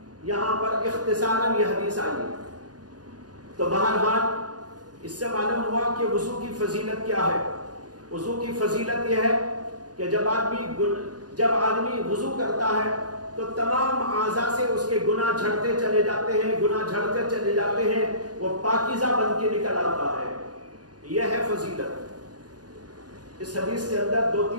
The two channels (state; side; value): late; left; 0.69 ms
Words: یہاں پر اختصاراً یہ حدیث آئی۔ تو بہرحال اس سے معلوم ہوا کہ وضو کی فضیلت کیا ہے۔ وضو کی فضیلت یہ ہے کہ جب آدمی وضو کرتا ہے تو تمام اعضاء سے اس کے گناہ جھڑتے چلے جاتے ہیں، گناہ جھڑتے چلے جاتے ہیں، وہ پاکیزہ بن کے نکل آتا ہے، یہ ہے فضیلت۔ اس حدیث کے اندر